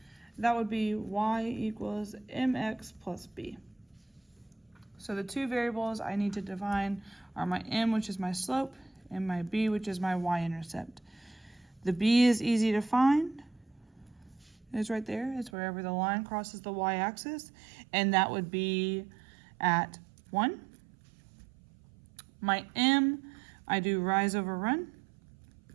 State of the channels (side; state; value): left; drops out; at 15.5 s